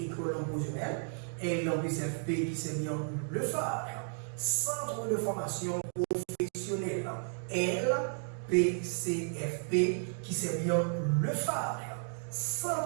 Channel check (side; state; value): left; silent; 56 dB below the other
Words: promotionnelle, LPCFP qui s'est mis en le phare, centre de formation professionnelle, LPCFP qui s'est mis en le phare,